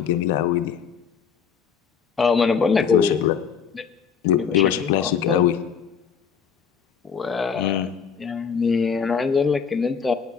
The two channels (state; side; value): quieter; right; 6.7 dB